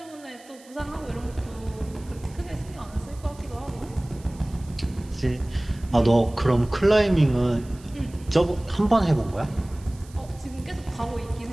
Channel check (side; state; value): right; noise; hiss, 24 dB below the sound